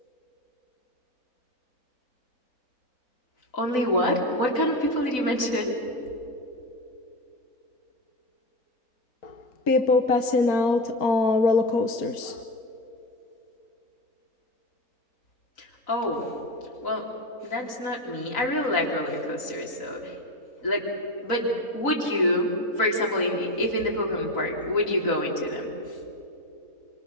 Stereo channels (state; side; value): late; right; 3.9 ms